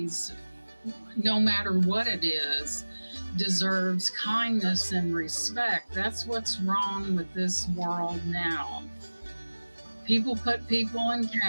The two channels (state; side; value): inverted; both; correlation -1.00